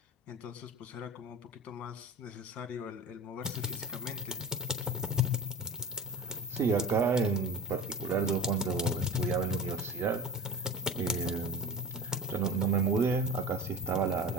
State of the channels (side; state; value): both; normal; correlation 0.34